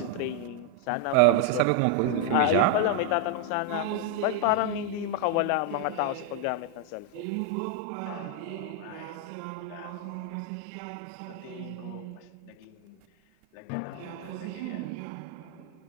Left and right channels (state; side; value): different; both; correlation 0.00